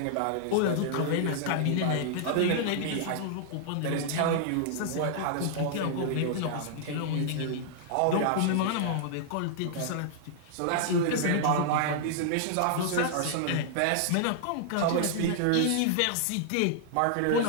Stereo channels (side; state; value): both; different; correlation -0.01